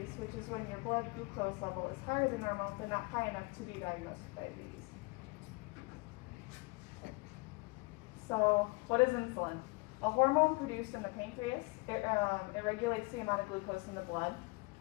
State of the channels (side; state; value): right; quieter; 27.8 dB